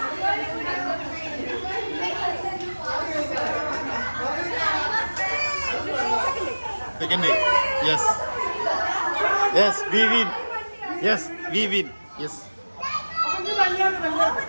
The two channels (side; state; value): both; inverted; correlation -1.00